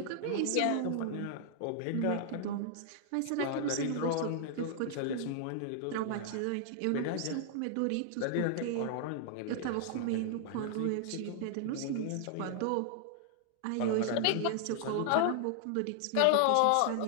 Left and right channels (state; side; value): different; both; correlation 0.00